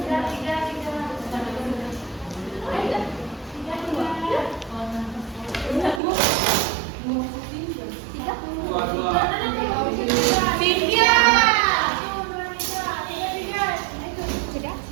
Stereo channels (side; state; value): left; drops out; at 6.0 s